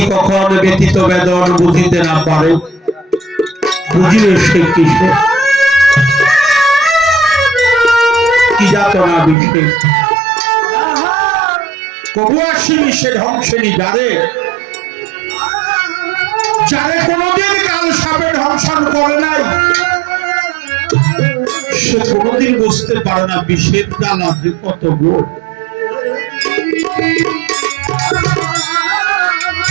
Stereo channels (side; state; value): left; drops out; at 9.3 s